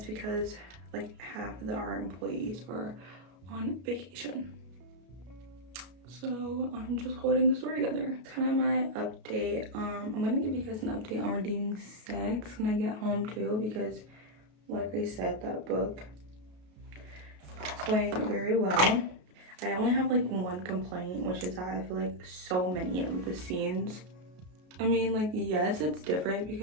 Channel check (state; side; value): late; left; 33 ms